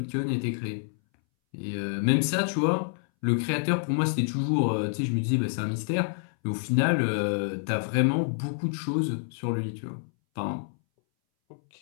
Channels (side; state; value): right; silent; 60 dB below the other